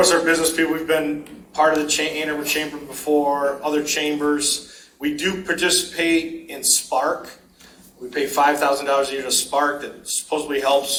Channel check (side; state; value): both; identical; correlation 1.00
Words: are business people, we've been part of the Ann Arbor Chamber before, other chambers. We do participate in Spark. We pay $5,000 a year to Spark that supposedly